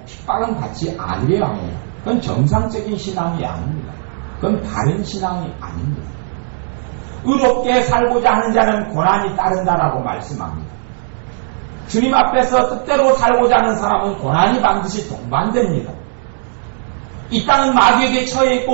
핍박은 받지 않으려 해요. 그건 정상적인 신앙이 아닙니다. 그건 바른 신앙이 아닙니다. 의롭게 살고자 하는 자는 고난이 따른다라고 말씀합니다. 주님 앞에서 뜻대로 살고자 하는 사람은 고난이 반드시 동반됩니다. 이 땅은 마귀에게 처해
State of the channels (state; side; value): silent; left; digital silence